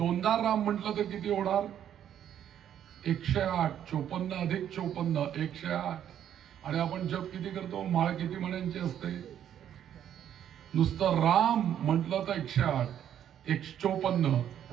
राम म्हटलं तर किती होणार, 108. 54 अधिक 54 108. आणि आपण जप किती करतो, माळ किती म्हणायची असते, नुसतं राम म्हटलं तर 108. 154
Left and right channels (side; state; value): left; quieter; 10.1 dB